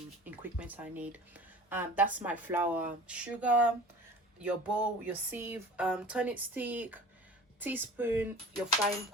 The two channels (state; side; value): normal; both; correlation 0.41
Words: equipment I need. That's my flour, sugar, your bowl, your sieve, tonic stick, teaspoon, your frying